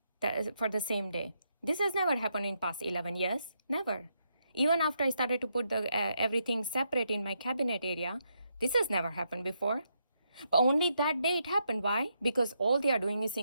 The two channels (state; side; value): inverted; both; correlation -0.79